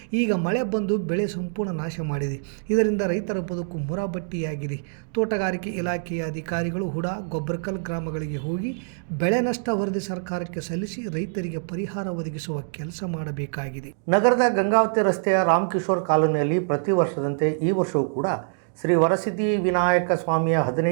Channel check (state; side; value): silent; left; 62 dB below the other